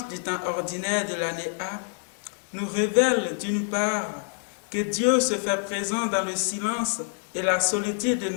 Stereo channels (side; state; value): right; silent; 61 dB below the other